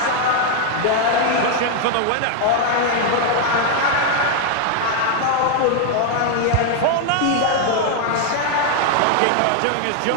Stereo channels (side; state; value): both; different; correlation 0.00